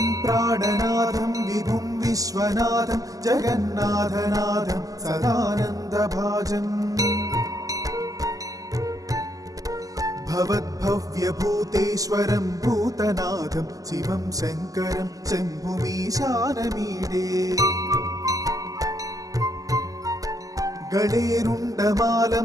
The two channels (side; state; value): left; late; 0.17 ms